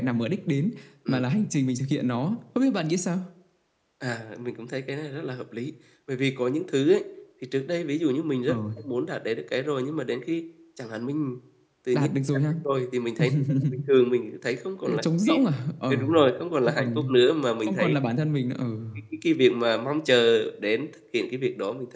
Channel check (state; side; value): identical; both; correlation 1.00